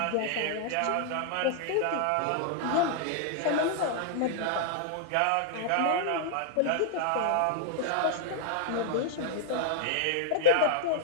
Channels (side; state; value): both; different; correlation -0.01